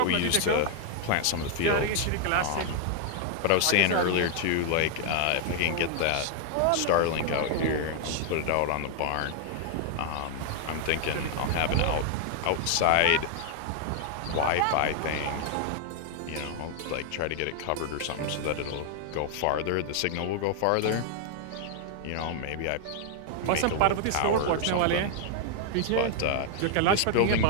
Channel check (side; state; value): both; different; correlation 0.00